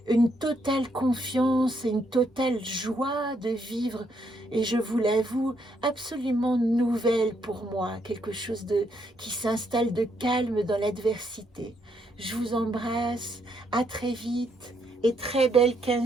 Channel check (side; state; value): both; normal; correlation 0.74